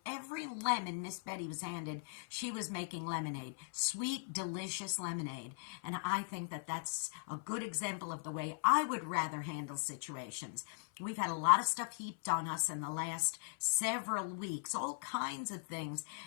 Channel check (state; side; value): silent; right; 52 dB below the other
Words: every lemon Miss Betty was handed, she was making lemonade. Sweet, delicious lemonade. And I think that that's a good example of the way I would rather handle situations. We've had a lot of stuff heaped on us in the last several weeks, all kinds of things,